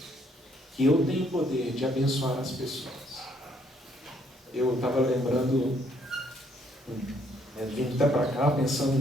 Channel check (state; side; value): normal; both; correlation 0.68